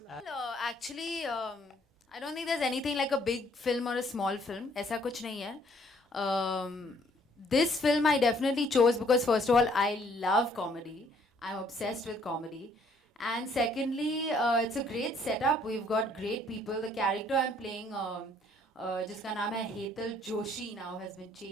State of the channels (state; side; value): normal; both; correlation 0.63